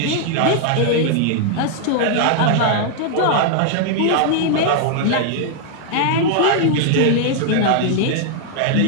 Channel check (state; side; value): different; both; correlation -0.01